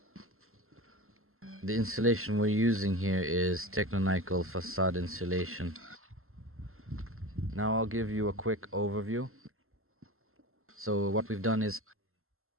The insulation we're using here is Techno-Nickel facade insulation. Now I'll give you a quick overview. So what we've done is,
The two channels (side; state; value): left; late; 0.62 ms